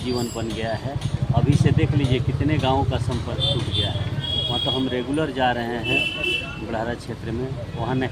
बन गया है। अभी से देख लीजिए कितने गाँवों का संपर्क टूट गया है। वहाँ तो हम रेगुलर जा रहे हैं बुढ़ारा क्षेत्र में, वहाँ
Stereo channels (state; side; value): identical; both; correlation 1.00